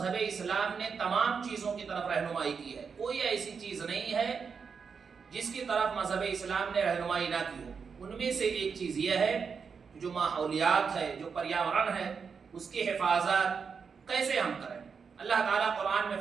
اسلام نے تمام چیزوں کی طرف رہنمائی کی ہے، کوئی ایسی چیز نہیں ہے جس کی طرف مذہب اسلام نے رہنمائی نہ کی ہو۔ ان میں سے ایک چیز یہ ہے جو ماحولیات ہے، جو پریاورن ہے، اس کی حفاظت کیسے ہم کریں۔ اللہ تعالیٰ قرآن میں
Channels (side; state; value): left; quieter; 5.8 dB